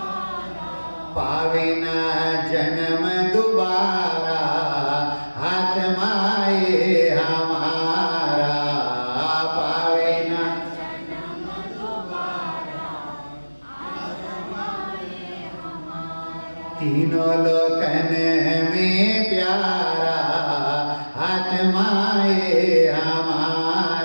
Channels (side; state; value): both; inverted; correlation -1.00